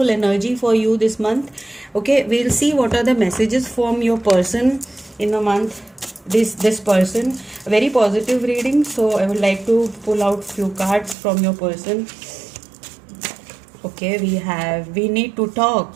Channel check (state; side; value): drops out; left; at 11.2 s